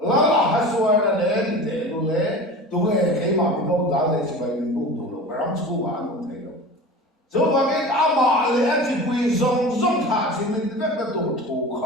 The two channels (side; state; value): both; normal; correlation 0.35